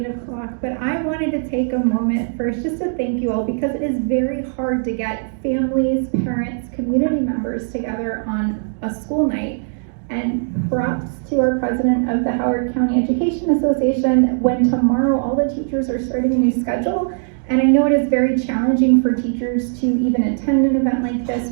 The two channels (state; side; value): silent; left; digital silence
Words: o'clock, but I wanted to take a moment first just to thank you all, because it is very hard to get families, parents, community members together on a school night. And props to our president of the Howard County Education Association, when tomorrow all the teachers are starting a new schedule. And I know it is very challenging for teachers to even attend an event like this,